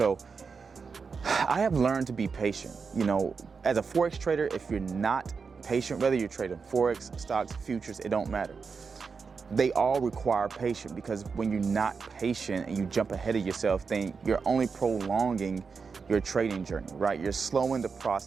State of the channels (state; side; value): quieter; left; 5.3 dB